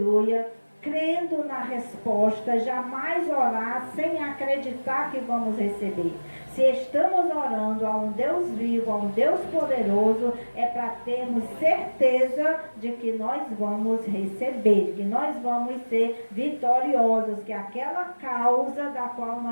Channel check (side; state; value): both; inverted; correlation -1.00